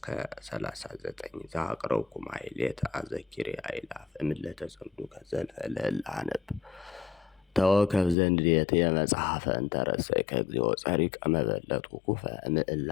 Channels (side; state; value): right; drops out; at 8.2 s